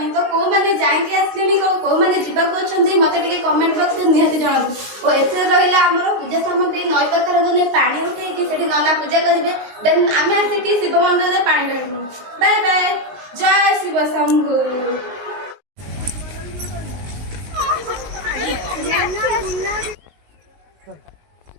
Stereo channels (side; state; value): left; late; 19 ms